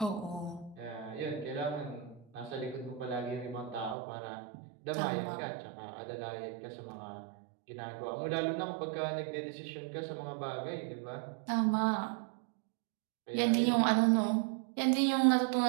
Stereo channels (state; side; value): drops out; left; at 4.0 s